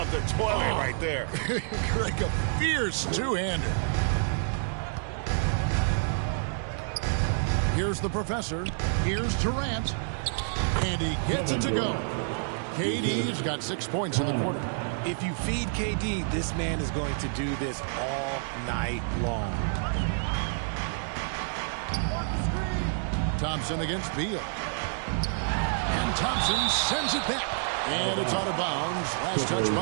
the toilet right there. Greg, a fierce two-hander. Here's the professor. Here's Durant. And he gets it to go. KD's got 6 points in the quarter. If you feed KD, this man is going to do this all night long. Thompson against Beal. And Thompson sends it back. And it's out of bounds. Last touch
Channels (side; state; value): left; silent; digital silence